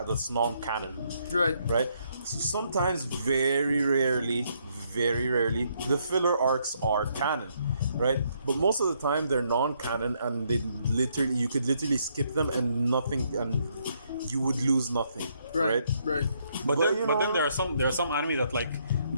non-canon, Right. right? So sometimes, very rarely, the filler arcs are canon, right? But most of the time they're non-canon, and you could literally skip them and you would lose nothing, right? Right. But you know, then there are some anime that like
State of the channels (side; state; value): both; inverted; correlation -0.73